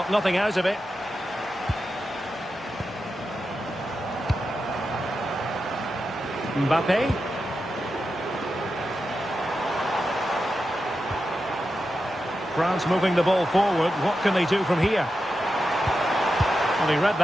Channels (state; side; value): normal; both; correlation 0.89